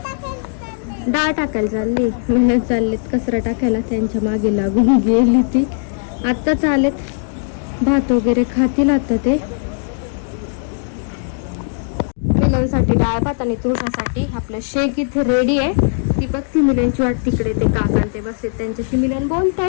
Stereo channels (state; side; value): silent; right; digital silence